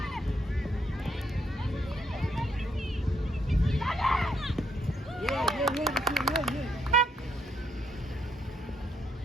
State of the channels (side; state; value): both; normal; correlation 0.74